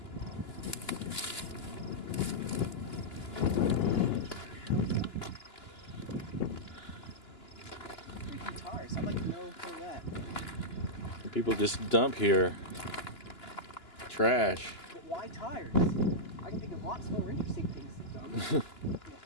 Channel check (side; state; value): right; late; 2.9 ms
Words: Guitars, I'd like to know for that. People just dump here. Trash. But why tires? I can think of lots more interesting things to dump.